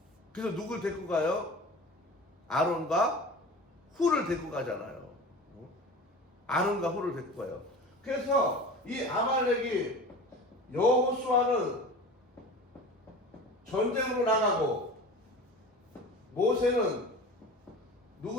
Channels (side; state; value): both; normal; correlation 0.36